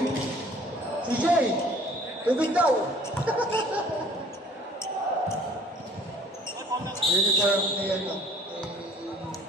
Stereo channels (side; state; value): both; normal; correlation 0.54